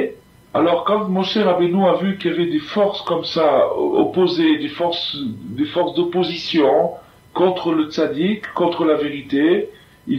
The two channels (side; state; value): both; identical; correlation 1.00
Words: Alors quand Moshe Rabbeinu a vu qu'il y avait des forces comme ça opposées, des forces d'opposition contre le tzaddik, contre la vérité,